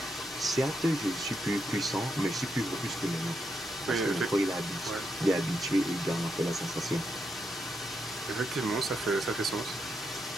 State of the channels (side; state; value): both; normal; correlation 0.82